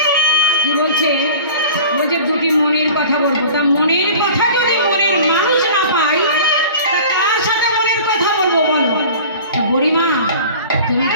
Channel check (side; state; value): both; inverted; correlation -0.42